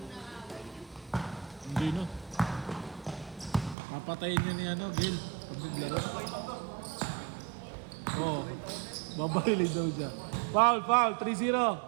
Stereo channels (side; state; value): left; drops out; at 3.8 s